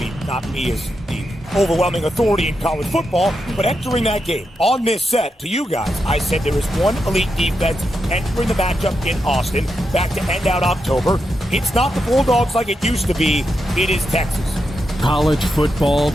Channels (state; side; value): normal; both; correlation 0.85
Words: not me as the overwhelming authority in college football, but entering that game on this set to you guys, I said there is one elite defense entering the matchup in Austin, back to end out October. It's not the Bulldogs like it used to be. It is Texas. College football